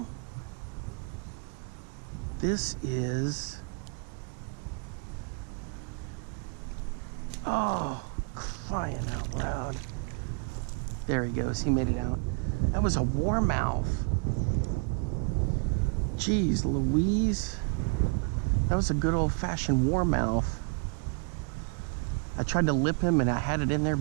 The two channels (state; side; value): quieter; left; 36.7 dB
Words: This is, oh, crying out loud. There he goes, he made it out. That was a warmouth. Jeez Louise. That was a good old-fashioned warmouth. I tried to lip him and I had it in there,